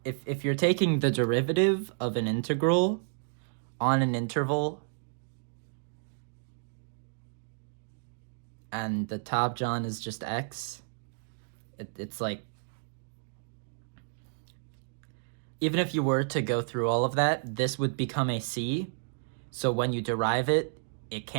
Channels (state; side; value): silent; left; digital silence